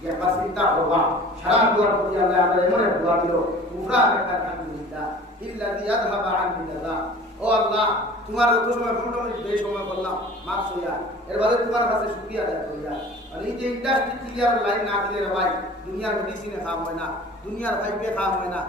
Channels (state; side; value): normal; both; correlation 0.44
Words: ইয়া পাসিতা হওয়া সারা দুয়ার প্রতি আল্লাহ আমরা এমন এক দোয়া দিল কুফরা একটা আলহামদুলিল্লাহ ইল্লাযী আযহাবা আননি আযা ও আল্লাহ তোমার যত সময় ঘন্টা মিনিট বেশি সময় বললাম মাফ হইয়া এর বাদে তোমার কাছে শুকরিয়া আদায় করিয়া আর এই যে ইন্ডাস্ট্রি ক্লিয়ার লাইন না দিলে রে ভাই দুনিয়ার মেডিসিনে খাওয়া হয় না দুনিয়ার ফাইবে খাওয়া হয় না